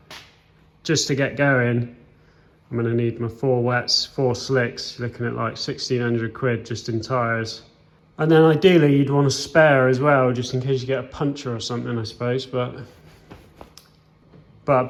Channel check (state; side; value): identical; both; correlation 1.00